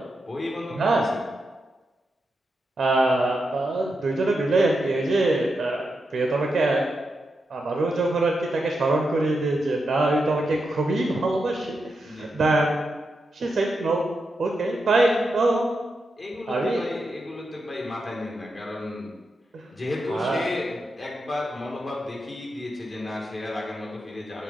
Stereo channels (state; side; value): normal; both; correlation 0.86